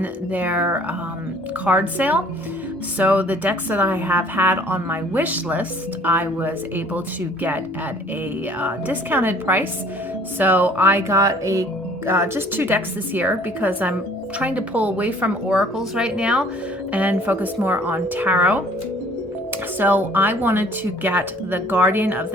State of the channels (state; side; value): normal; both; correlation 0.55